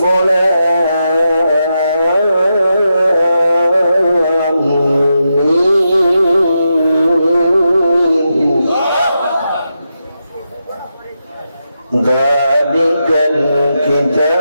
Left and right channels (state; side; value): inverted; both; correlation -0.86